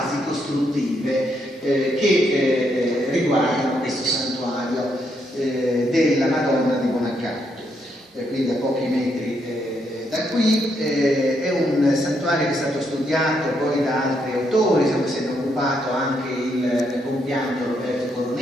costruttive che riguardano questo santuario della Madonna di Buonaccanto, quindi a pochi metri da qui. È un santuario che è stato studiato poi da altri autori, se ne è occupato anche il compianto Roberto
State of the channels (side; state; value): both; normal; correlation 0.77